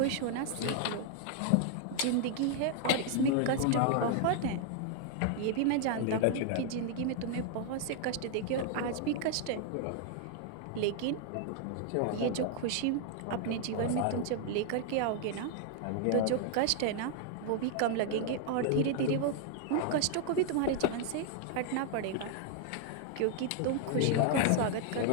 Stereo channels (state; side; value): different; both; correlation 0.00